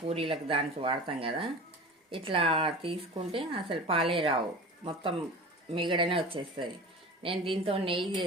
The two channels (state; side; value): normal; both; correlation 0.35